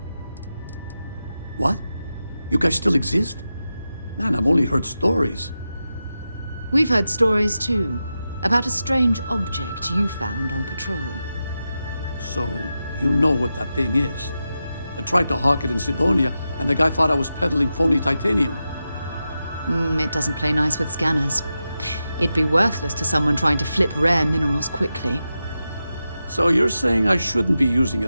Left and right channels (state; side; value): inverted; both; correlation -0.91